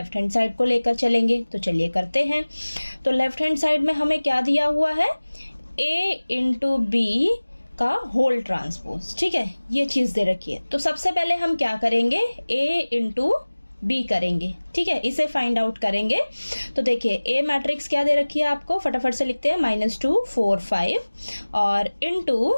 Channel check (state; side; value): inverted; both; correlation -1.00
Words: हैंड साइड को लेकर चलेंगे। तो चलिए करते हैं। तो लेफ्ट हैंड साइड में हमें क्या दिया हुआ है, A इंटू बी का होल ट्रांसपोज, ठीक है, ये चीज दे रखी है। तो सबसे पहले हम क्या करेंगे, A इंटू बी करेंगे, ठीक है, इसे फाइंड आउट करेंगे। तो देखिए A मैट्रिक्स क्या दे रखी है आपको, फटाफट से लिखते हैं, -2 4 5 और इनटू